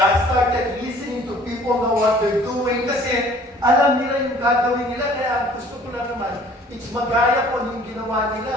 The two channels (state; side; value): normal; both; correlation 0.53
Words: I started listening to people know what they're doing kasi alam nila yung gagawin nila, kaya gusto ko lang naman, it's magaya ko yung ginawa